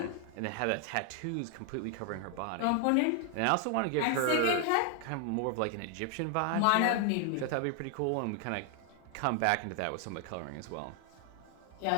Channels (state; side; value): different; both; correlation 0.00